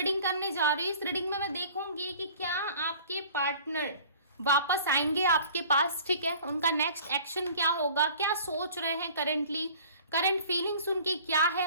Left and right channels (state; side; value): inverted; both; correlation -0.47